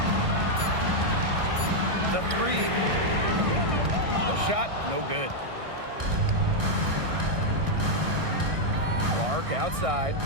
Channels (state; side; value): late; left; 1.6 ms